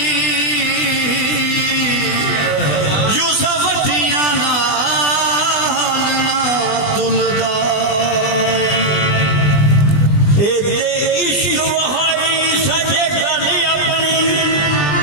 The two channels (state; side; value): late; right; 20 ms